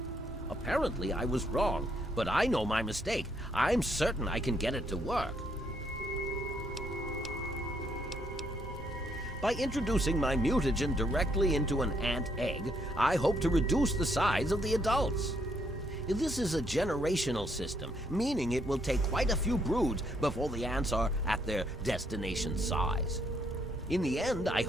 Apparently, I was wrong, but I know my mistake. I'm certain I can get it to work. By introducing my mutagen directly into an ant egg, I hope to reduce the size of the adults. This is a generational system, meaning it will take quite a few broods before the ants are at their destination size. In the end, I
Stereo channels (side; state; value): both; normal; correlation 0.72